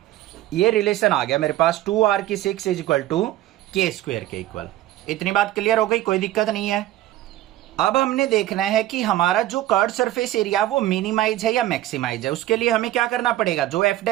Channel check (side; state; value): left; quieter; 14.4 dB